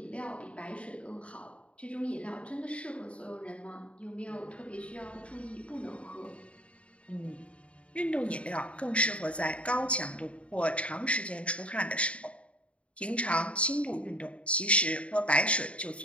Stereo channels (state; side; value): late; right; 0.062 ms